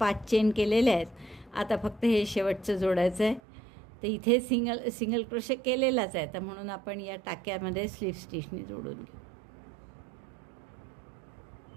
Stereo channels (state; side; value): drops out; left; at 3.4 s